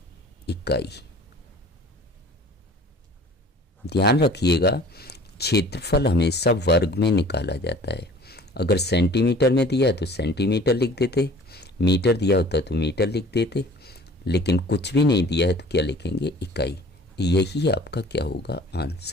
इकाई। ध्यान रखिएगा, क्षेत्रफल हमेशा वर्ग में निकाला जाता है। अगर सेंटीमीटर में दिया है तो सेंटीमीटर लिख देते, मीटर दिया होता तो मीटर लिख देते, लेकिन कुछ भी नहीं दिया है तो क्या लिखेंगे, इकाई। यही आपका क्या होगा,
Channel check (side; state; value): both; normal; correlation 0.48